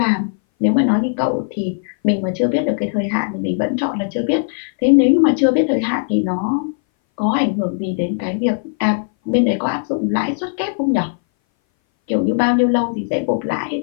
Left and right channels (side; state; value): right; silent; 60 dB below the other